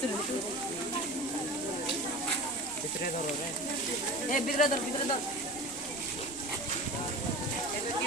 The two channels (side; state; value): left; noise; rumble, 20 dB below the sound